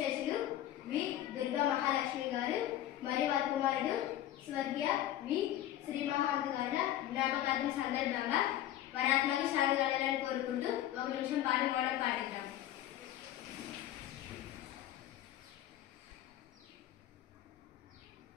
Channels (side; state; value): right; quieter; 12.8 dB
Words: వి దుర్గా మహాలక్ష్మి గారు మరియు వారి కుమారుడు స్వర్గీయ వి శ్రీమహాంత్ గారి జ్ఞాపకార్థం సందర్భంగా వరాత్మకి శాంతి కలగాలని కోరుకుంటూ ఒక నిమిషం పాట మనం పాటిద్దాం.